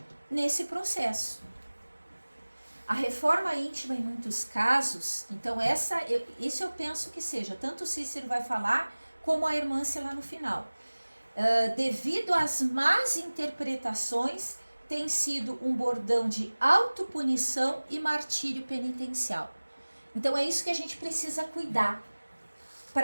nesse processo. A reforma íntima, em muitos casos, então isso eu penso que seja, tanto o Cícero vai falar, como a Hermância lá no final. Devido às más interpretações, tem sido um bordão de autopunição e martírio penitencial. Então é isso que a gente precisa cuidar,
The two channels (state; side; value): inverted; both; correlation -1.00